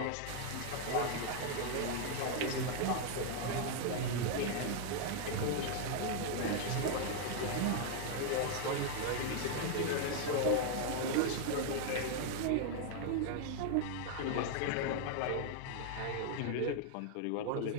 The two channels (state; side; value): different; both; correlation 0.00